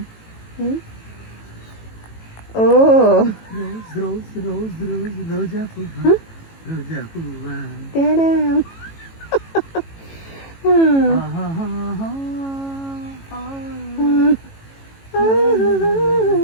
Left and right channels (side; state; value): right; late; 18 ms